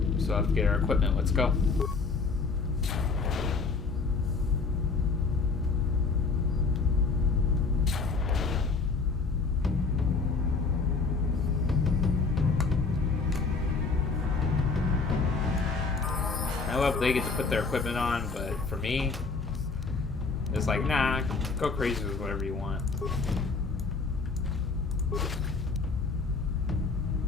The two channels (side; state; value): right; quieter; 4.3 dB